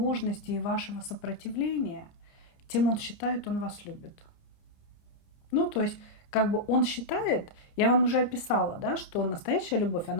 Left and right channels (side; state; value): right; late; 29 ms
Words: и вашего сопротивления, тем он считает, он вас любит. Ну, то есть, как бы он считает, я вам уже описала, да, что настоящая любовь,